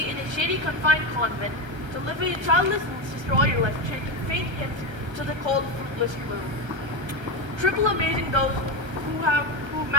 in a shady confined convent, to live a childless sister all your life, chanting faint hymns to the cold, fruitless gloom. Triple amazing those who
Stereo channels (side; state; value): left; late; 1.3 ms